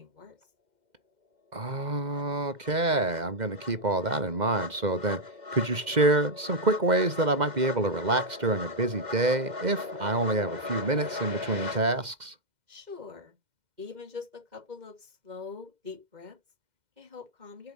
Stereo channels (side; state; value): left; late; 2.1 ms